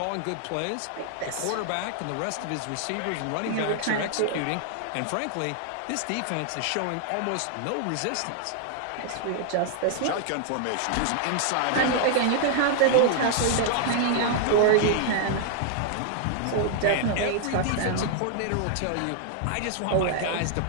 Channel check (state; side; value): different; both; correlation 0.00